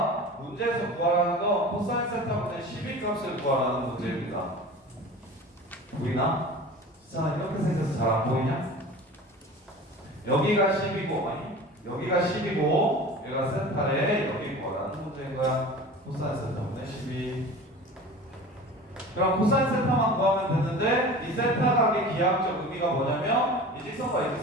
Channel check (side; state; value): both; normal; correlation 0.37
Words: 문제에서 구하라는 건 코사인 세타분의 12 값을 구하라는 문제입니다. 보이나? 자, 이렇게 생겨서 잘 안 보이냐? 여기가 10이고 여기가 10이고 얘가 세타에 여기 구하라는 문제인 거야. 코사인 세타분의 12. 그럼 코사인 세타만 구하면 되는데 이 세타각의 기하학적 의미가 뭐냐면 이 직선과 이